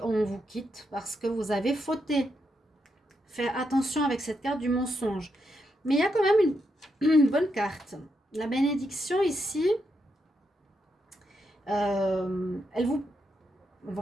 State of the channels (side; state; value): both; normal; correlation 0.82